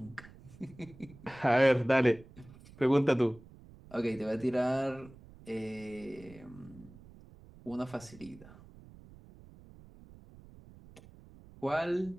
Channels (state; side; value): noise; right; rumble, 21 dB below the sound